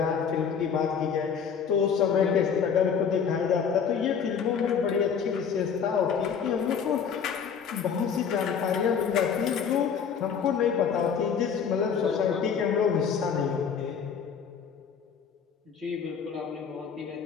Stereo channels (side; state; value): right; quieter; 6.9 dB